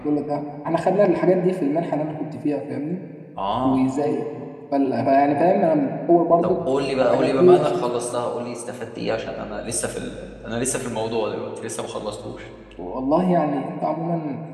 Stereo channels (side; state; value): both; identical; correlation 1.00